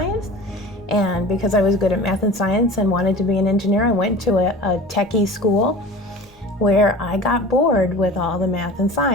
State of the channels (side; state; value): both; normal; correlation 0.39